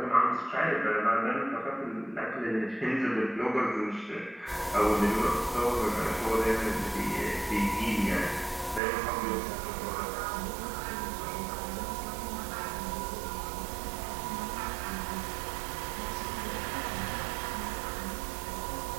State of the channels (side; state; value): left; drops out; at 8.8 s